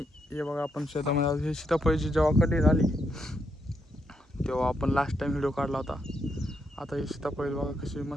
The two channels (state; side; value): normal; both; correlation 0.79